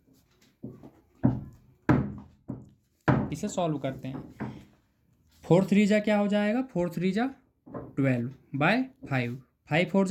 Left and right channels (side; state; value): both; identical; correlation 1.00